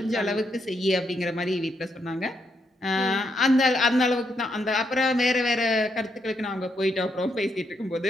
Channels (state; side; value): normal; both; correlation 0.78